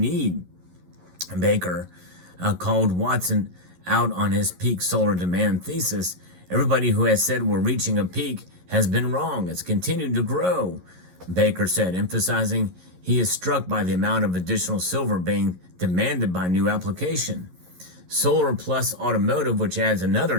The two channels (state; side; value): late; left; 11 ms